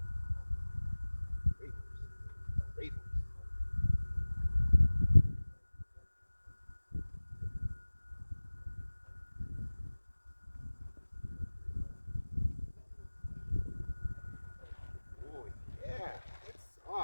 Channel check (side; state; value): both; inverted; correlation -1.00